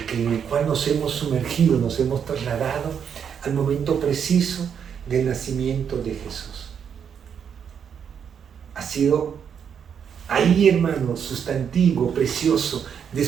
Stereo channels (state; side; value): quieter; left; 7.6 dB